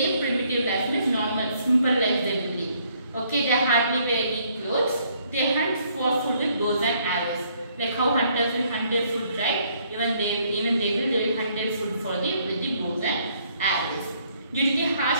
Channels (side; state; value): both; inverted; correlation -0.67